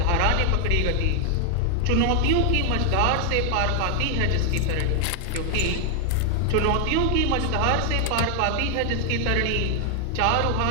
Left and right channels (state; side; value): different; both; correlation 0.00